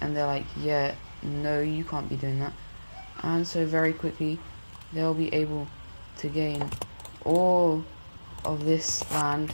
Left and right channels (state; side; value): inverted; both; correlation -1.00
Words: they're like, yeah, no, you can't be doing that. And so very quickly they'll be able to gain all of this land,